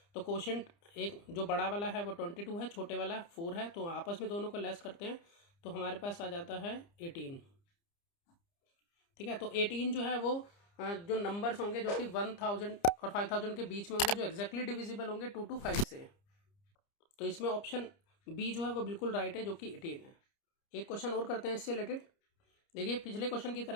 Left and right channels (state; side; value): late; right; 30 ms